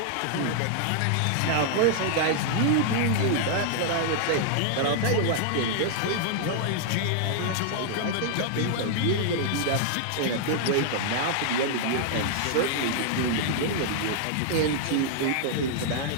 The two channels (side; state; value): both; different; correlation -0.01